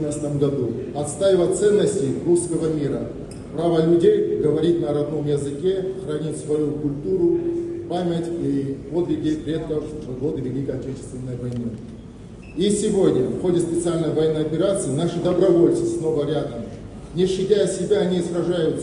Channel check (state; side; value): identical; both; correlation 1.00